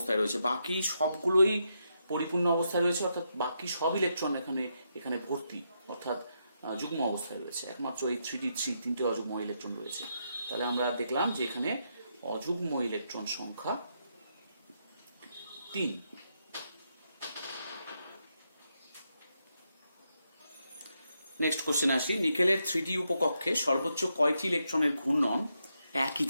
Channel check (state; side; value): inverted; both; correlation -0.81